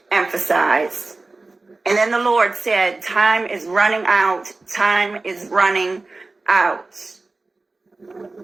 emphasized. And then the Lord said, time is running out. Time is running out.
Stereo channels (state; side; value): quieter; left; 3.4 dB